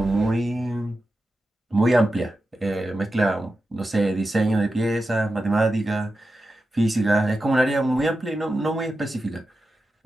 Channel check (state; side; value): normal; both; correlation 0.91